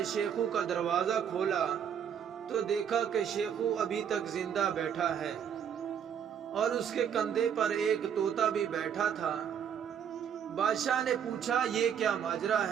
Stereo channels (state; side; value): quieter; left; 8.3 dB